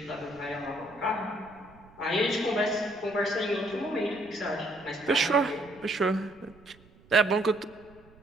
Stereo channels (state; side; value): noise; right; rumble, 26 dB below the sound